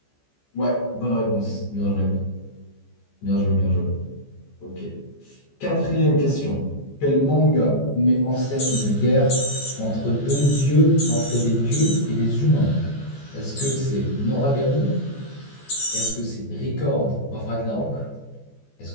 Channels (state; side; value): late; right; 14 ms